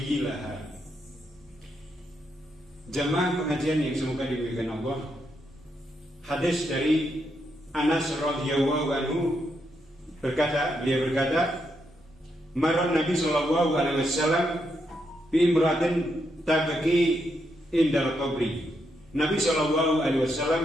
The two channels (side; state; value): both; normal; correlation 0.80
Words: Jamaah pengajian yang semoga dimuliakan Allah, hadis dari Anas radhiyallahu anhu beliau berkata, marra Nabi sallallahu alaihi wasallam bi imratin tabki indal qabri. Nabi sallallahu alaihi wasallam